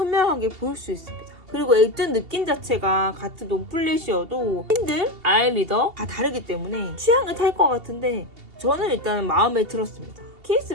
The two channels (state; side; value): late; left; 2.8 ms